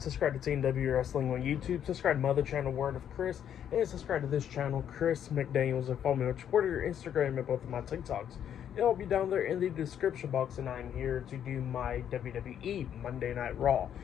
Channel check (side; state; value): right; quieter; 9.4 dB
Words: Team W Wrestling on YouTube. Subscribe to my other channel, Word of Chris. And subscribe to this channel, Chris McDaniels. And follow me on Twitter, Instagram, and both of my TikToks. It'll be down there in the description box. And I'm here to do my WWE Monday Night Raw,